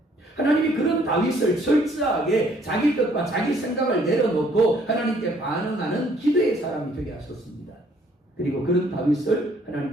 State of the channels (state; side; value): normal; both; correlation 0.63